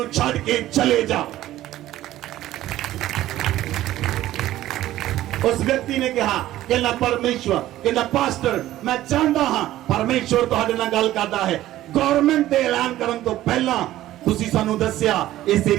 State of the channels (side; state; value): left; quieter; 14.4 dB